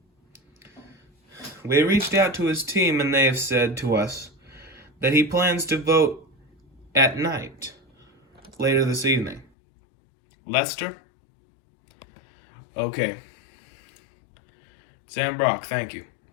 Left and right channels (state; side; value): drops out; right; at 9.5 s